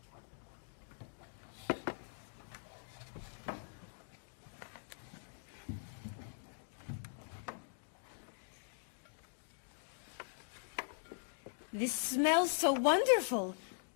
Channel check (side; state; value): right; silent; digital silence